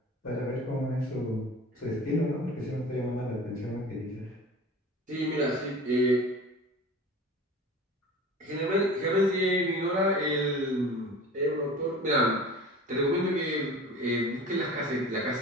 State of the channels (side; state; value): both; normal; correlation 0.39